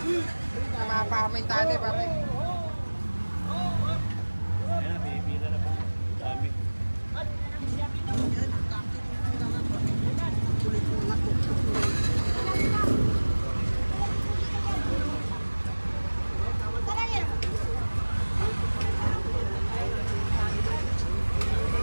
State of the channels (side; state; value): both; inverted; correlation -1.00